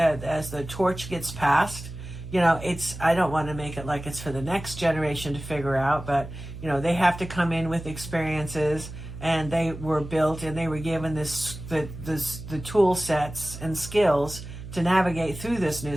gets passed, I don't want to make it like it's for the next generation to figure out, but they have to come in with experiences, and they were built and they were given the tool sets and skills to navigate through this new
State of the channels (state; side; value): noise; right; hum, 11 dB below the sound